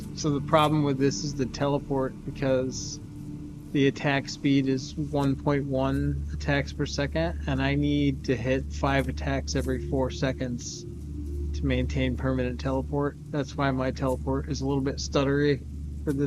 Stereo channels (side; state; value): both; identical; correlation 1.00